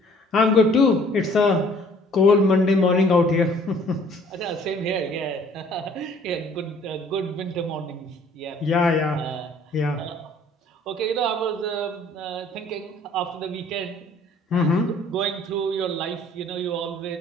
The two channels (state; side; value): normal; both; correlation 0.56